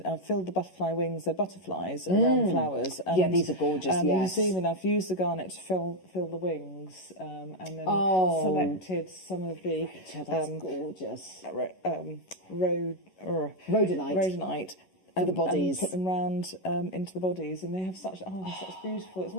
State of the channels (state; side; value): late; right; 11 ms